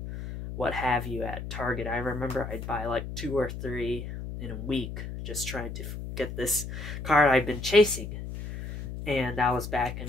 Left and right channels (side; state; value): left; noise; hum, 7 dB below the sound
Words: what have you at Target. I remember I'd buy like 2 or 3 in a week just trying to get this card I've been chasing. And that was back